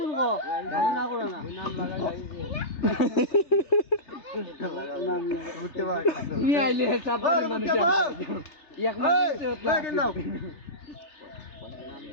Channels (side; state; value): right; late; 3.3 ms